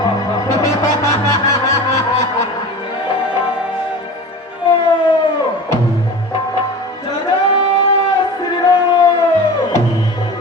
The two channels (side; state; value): both; normal; correlation 0.34